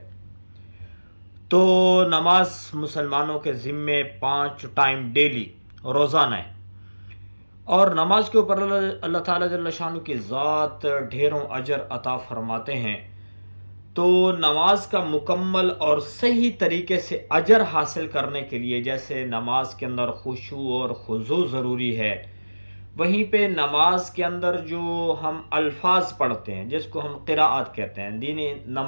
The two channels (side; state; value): both; inverted; correlation -1.00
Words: تو نماز مسلمانوں کے ذمے 5 ٹائم ڈیلی روزانہ ہے، اور نماز کے اوپر اللہ تعالیٰ جل شانہ کی ذات ڈھیروں اجر عطا فرماتے ہیں۔ تو نماز کا مکمل اور صحیح طریقے سے اجر حاصل کرنے کے لیے، جیسے نماز کے اندر خشوع اور خضوع ضروری ہے، وہیں پہ نماز کے اندر جو ہم الفاظ پڑھتے ہیں جس کو ہم قراءت کہتے ہیں، دین